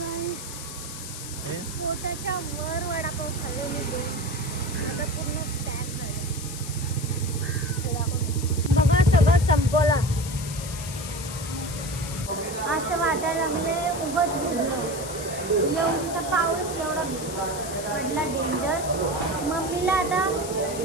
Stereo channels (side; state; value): left; noise; hiss, 10 dB below the sound